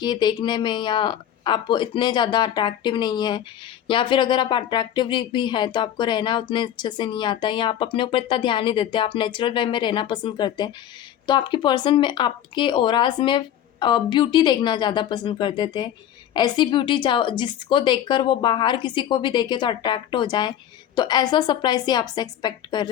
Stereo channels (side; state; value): right; quieter; 10.8 dB